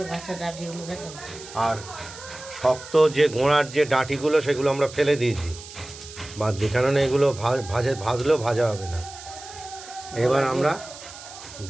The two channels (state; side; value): noise; right; hiss, 15 dB below the sound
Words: আর শক্ত যে গোড়ার যে ডাঁটিগুলো সেগুলো আমরা ফেলে দিয়েছি বাদ দিয়ে, কেননা এগুলো ভাজলেও ভাজা হবে না। এবার আমরা